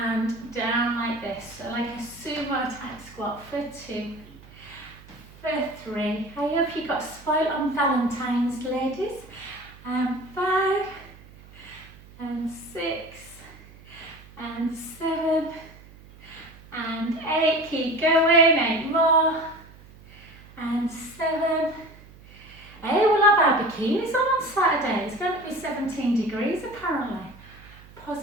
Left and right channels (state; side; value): noise; right; hum, 21 dB below the sound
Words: down like this. So like a sumo type squat for 2, for 3. I hope you got spoiled on Valentine's, ladies. And 5, and 6, and 7, and 8. Keep going. 8 more. And 7. Hey, we'll have our bikinis on Saturday. It's going to be 17 degrees apparently.